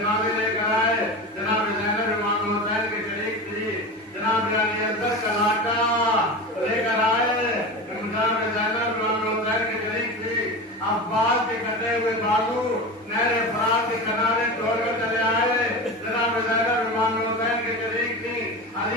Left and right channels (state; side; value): normal; both; correlation 0.27